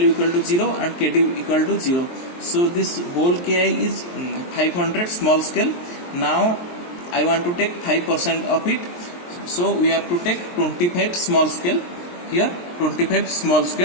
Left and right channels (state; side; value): late; right; 23 ms